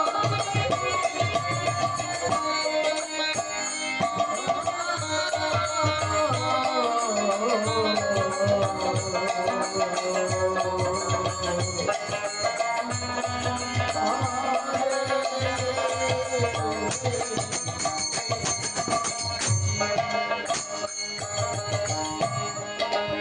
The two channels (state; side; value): identical; both; correlation 1.00